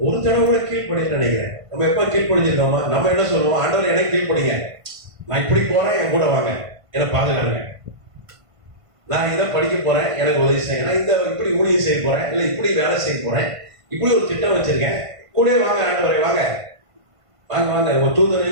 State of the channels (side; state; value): left; late; 1.5 ms